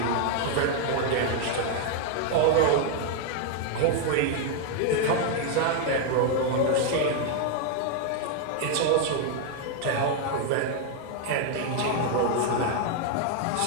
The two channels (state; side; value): different; both; correlation 0.00